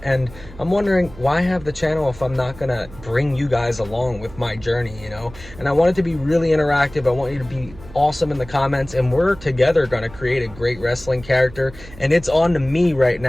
I'm wondering why have the channel if I'm not going to bring you guys along with my journey, you know? And I want it to be really interactive. I want you to be awesome in the comments, and we're together going to create a great wrestling character, and it's on to me right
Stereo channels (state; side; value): noise; right; hum, 18 dB below the sound